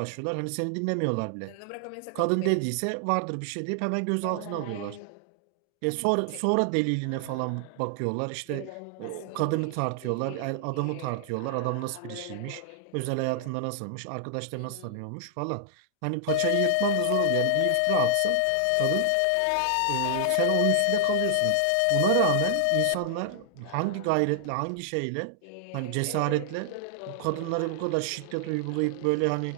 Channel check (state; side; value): different; both; correlation 0.00